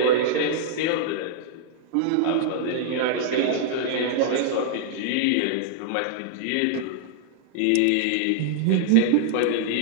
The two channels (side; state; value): both; different; correlation -0.01